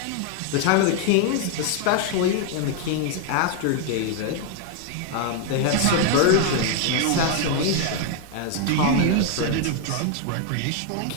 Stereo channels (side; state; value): both; different; correlation 0.00